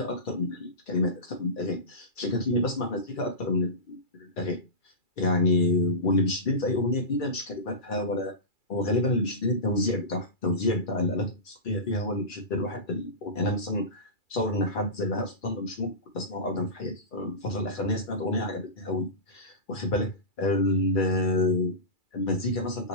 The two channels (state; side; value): late; right; 2.3 ms